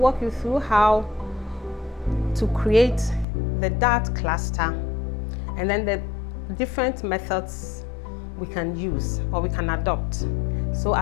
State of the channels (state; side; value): drops out; right; at 3.2 s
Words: you through how to create the dart cluster and then the different methods we can use or we can adopt. So